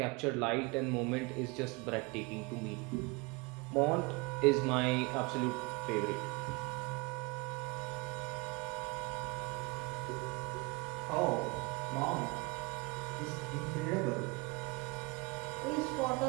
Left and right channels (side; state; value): left; quieter; 27.2 dB